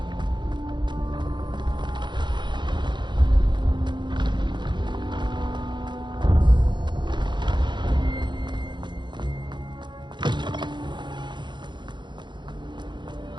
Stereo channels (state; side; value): late; left; 0.22 ms